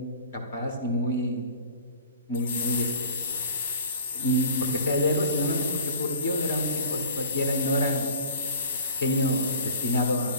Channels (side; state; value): both; inverted; correlation -0.44